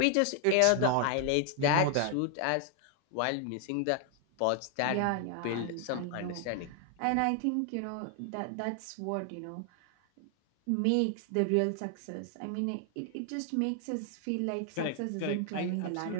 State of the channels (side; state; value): both; different; correlation 0.00